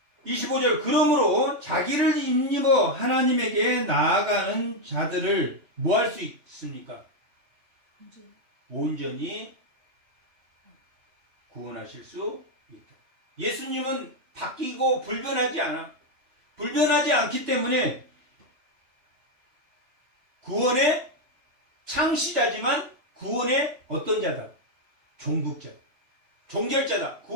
25절 그러므로 자기를 힘입어 하나님에게 나아가는 자들을 뭐 할 수 있습니까? 온전히 구원하실 수 있다. 예수님은 바뀌고 불변하지 않아. 불변하지 않기 때문에 구원의 창시자지만 구원의 어떤 자다? 종국자. 종결자다.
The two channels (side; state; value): left; late; 3.2 ms